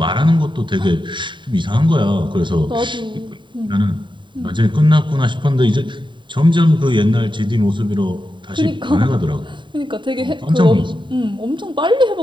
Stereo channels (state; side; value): late; left; 0.23 ms